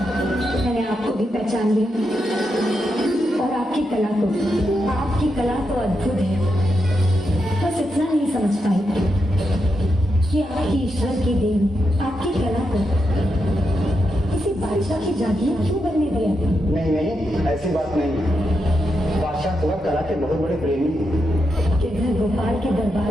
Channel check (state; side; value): normal; both; correlation 0.85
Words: मैंने आपको भी पहचान लिया और आपकी कला को, आपकी कला तो अद्भुत है। बस इतना नहीं समझ पाई कि आपकी ईश्वर की देन आपकी कला को किसी बादशाह की जागीर क्यों बनने दिया। नहीं नहीं, ऐसी बात नहीं। बादशाह तो कला के बहुत बड़े प्रेमी हैं। गिरधर गोपाल के